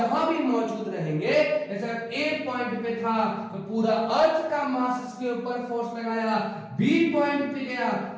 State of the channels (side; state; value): both; identical; correlation 1.00